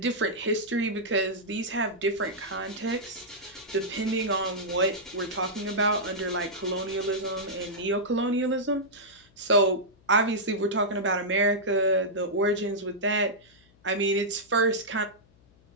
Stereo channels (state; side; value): noise; left; hum, 30 dB below the sound